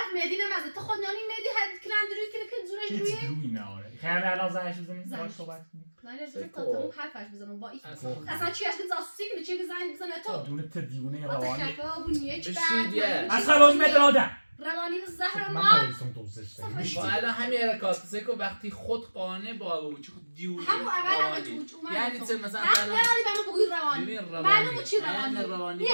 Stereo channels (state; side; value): inverted; both; correlation -1.00